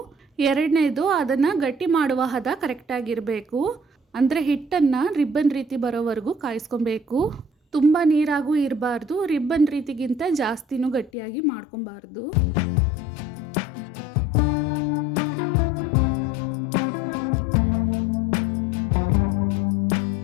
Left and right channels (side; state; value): right; drops out; at 11.1 s